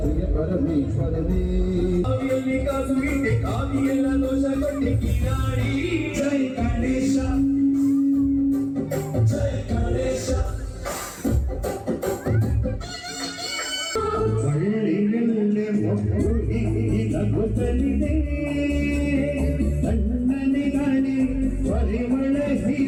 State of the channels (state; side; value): identical; both; correlation 1.00